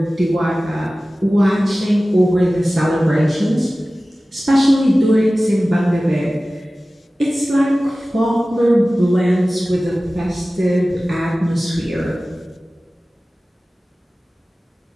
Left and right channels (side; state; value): both; normal; correlation 0.97